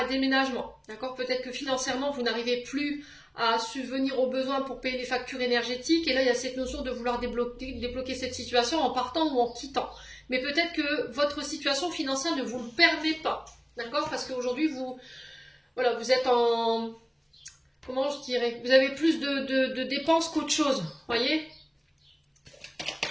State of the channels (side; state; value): both; identical; correlation 1.00